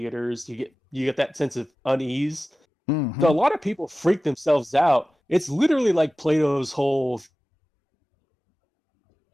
you get that sense of unease. So a mm-hmm. lot of people freak themselves out. It's literally like Plato's whole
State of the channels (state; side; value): normal; both; correlation 0.95